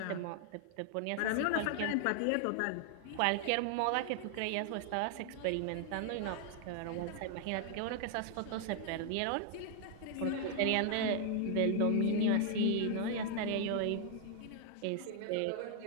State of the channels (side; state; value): both; different; correlation 0.00